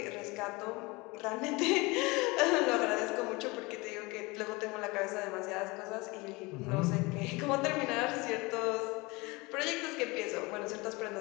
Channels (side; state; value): right; quieter; 24.5 dB